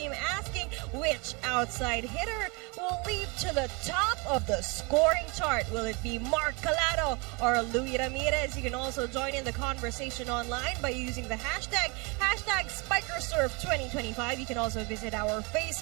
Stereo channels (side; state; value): left; quieter; 30.0 dB